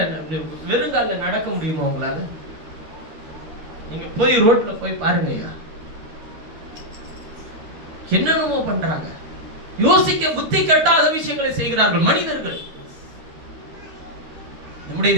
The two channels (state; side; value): late; left; 12 ms